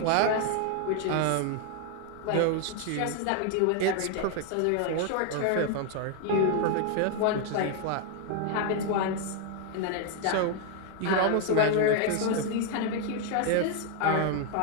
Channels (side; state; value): both; different; correlation 0.00